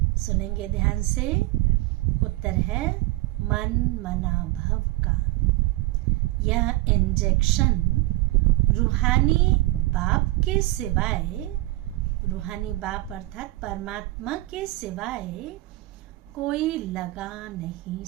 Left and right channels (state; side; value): quieter; left; 19.4 dB